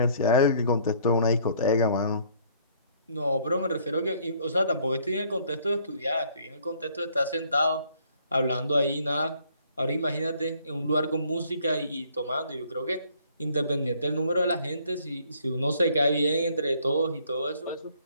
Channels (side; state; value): both; inverted; correlation -0.62